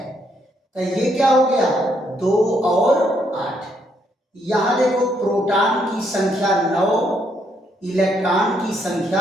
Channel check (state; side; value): normal; both; correlation 0.73